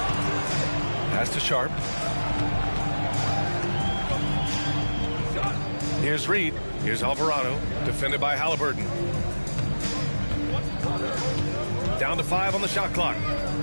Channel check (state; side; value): inverted; both; correlation -1.00